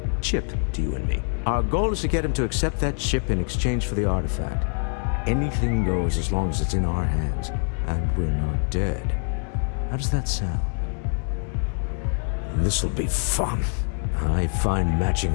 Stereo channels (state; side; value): silent; right; 56 dB below the other